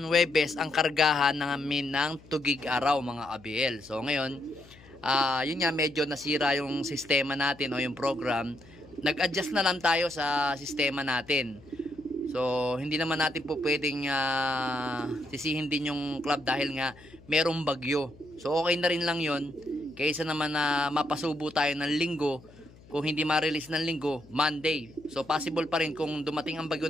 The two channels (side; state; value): left; noise; hum, 23 dB below the sound